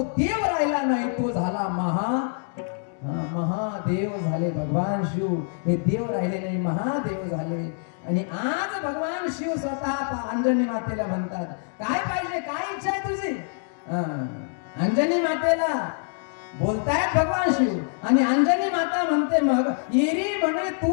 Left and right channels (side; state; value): right; silent; 58 dB below the other